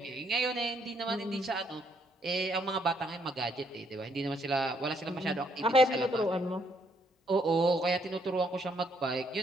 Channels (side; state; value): both; normal; correlation 0.71